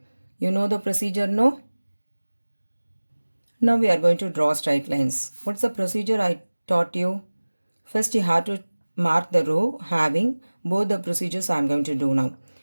You know the procedure, no? Now we are going to draw straight lines. What's the procedure I taught you? First you have to mark the row having both the procedures I am going to do now.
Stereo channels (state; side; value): inverted; both; correlation -1.00